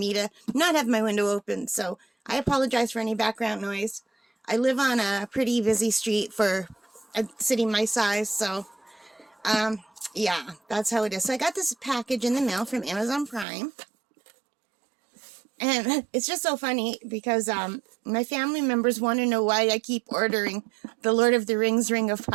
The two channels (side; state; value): left; drops out; at 13.5 s